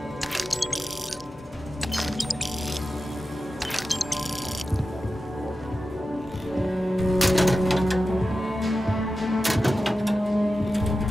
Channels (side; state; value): both; normal; correlation 0.93